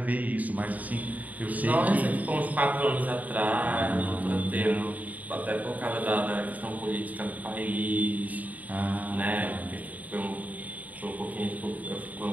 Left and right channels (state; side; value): late; left; 0.075 ms